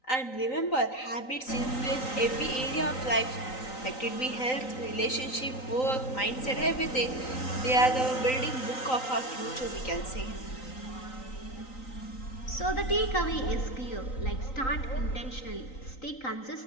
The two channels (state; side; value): late; right; 3.9 ms